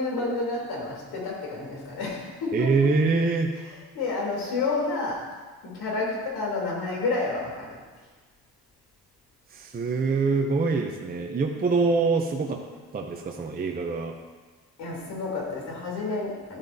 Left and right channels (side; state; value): both; normal; correlation 0.43